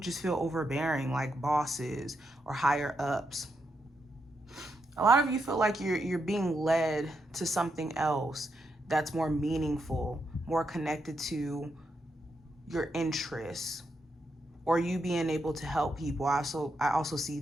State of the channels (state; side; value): normal; both; correlation 0.82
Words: feel overbearing, like bosses or higher ups. A lot of you feel like you're being led to something else that's more meaningful, more connected to your interests, or you being able to help people. I also see